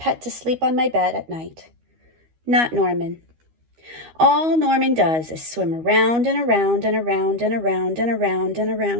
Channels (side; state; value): left; late; 13 ms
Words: to sleep on my bed at night. Not Norman. All Norman does is swim around and around and around and around and around and